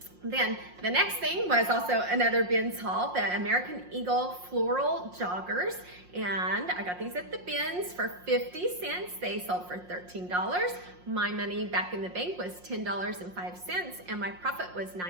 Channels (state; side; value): late; left; 5.6 ms